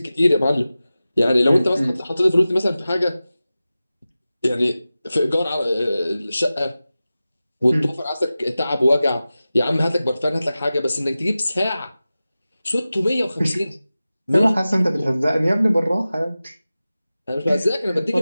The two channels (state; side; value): inverted; both; correlation -0.95